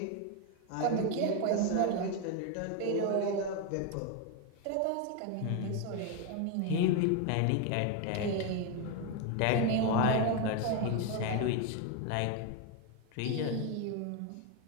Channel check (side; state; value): both; different; correlation 0.02